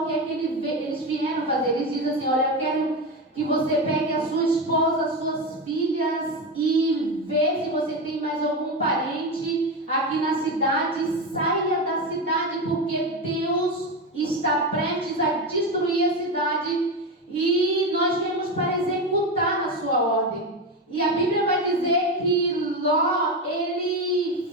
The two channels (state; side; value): normal; both; correlation 0.16